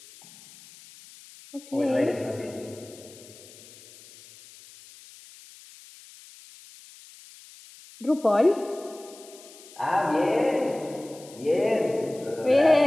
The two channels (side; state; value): left; noise; hiss, 21 dB below the sound